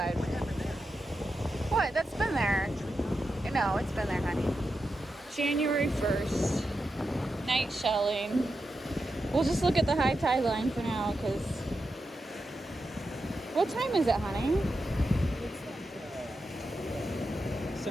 What? That's been there. No, it's been there, honey. January 1st, night shelling. We'll just look at the high tide line for now because. What time is it, honey? It's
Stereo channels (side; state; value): both; normal; correlation 0.88